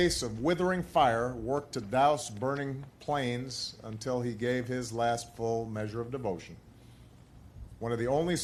of withering fire, worked to douse burning planes until he gave his last full measure of devotion. One of the only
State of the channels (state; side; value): identical; both; correlation 1.00